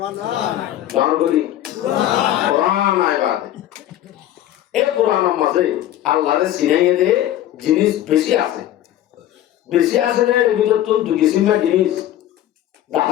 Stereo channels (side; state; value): right; quieter; 12.7 dB